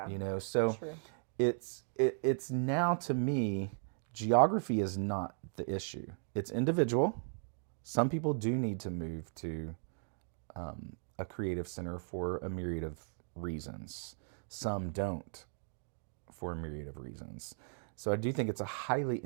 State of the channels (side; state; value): left; silent; digital silence